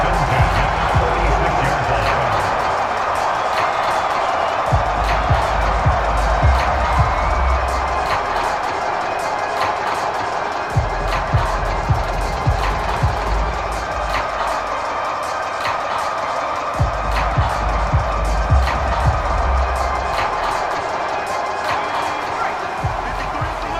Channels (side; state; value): both; identical; correlation 1.00